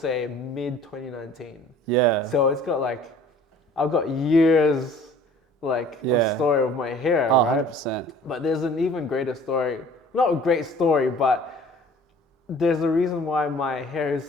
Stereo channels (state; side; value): normal; both; correlation 0.50